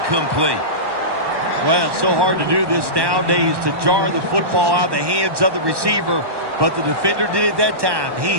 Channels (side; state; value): left; late; 1.1 ms